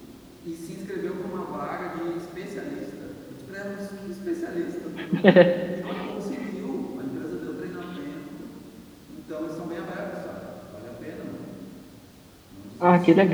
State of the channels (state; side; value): identical; both; correlation 1.00